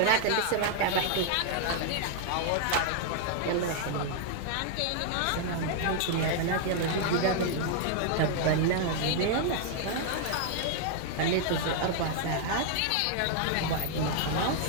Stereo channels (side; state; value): both; different; correlation 0.00